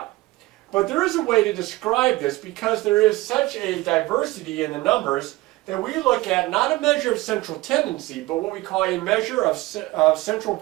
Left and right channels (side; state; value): left; quieter; 19.3 dB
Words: But there is a way to describe this because there is such a diversity in the numbers that we look at not a measure of central tendency, but what we call a measure of central